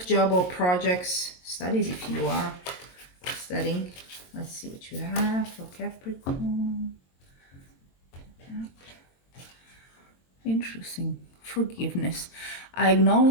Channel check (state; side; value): late; right; 22 ms